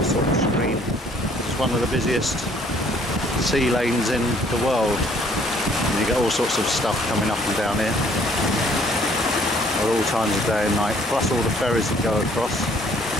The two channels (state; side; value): normal; both; correlation 0.61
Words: sort of screen. It's one of the busiest sea lanes in the world, and you get all sorts of stuff coming up and down here at all times of day and night, plus all the ferries that go across